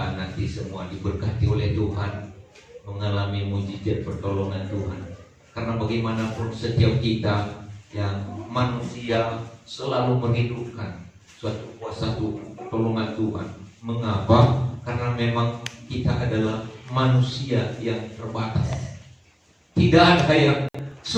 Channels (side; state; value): both; identical; correlation 1.00